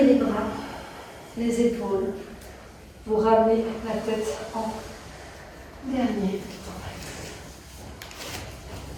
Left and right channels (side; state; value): both; identical; correlation 1.00